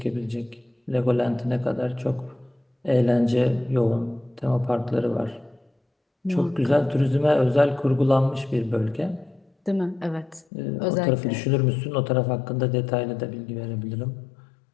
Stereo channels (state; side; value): drops out; right; at 10.5 s